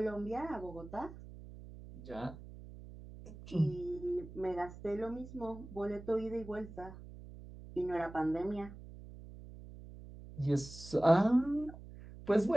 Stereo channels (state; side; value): noise; right; hum, 15 dB below the sound